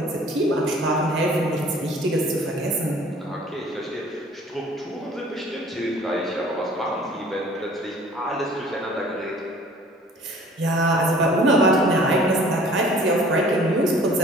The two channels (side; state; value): both; normal; correlation 0.51